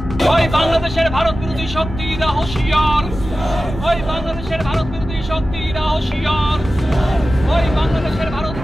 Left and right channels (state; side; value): normal; both; correlation 0.94